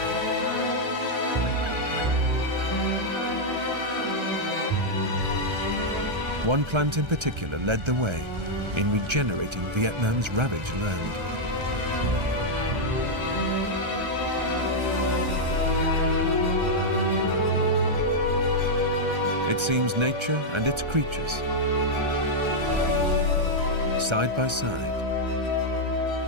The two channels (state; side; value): late; left; 1.3 ms